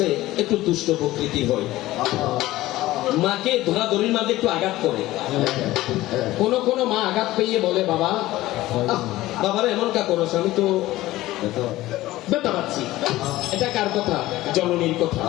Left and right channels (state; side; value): quieter; right; 16.8 dB